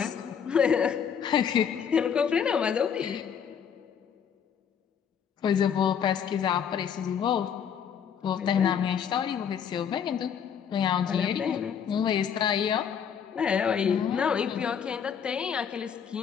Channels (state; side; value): quieter; right; 7.7 dB